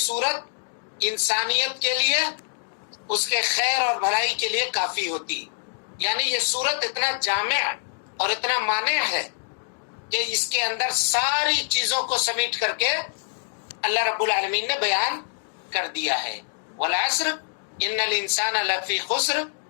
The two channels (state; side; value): silent; right; digital silence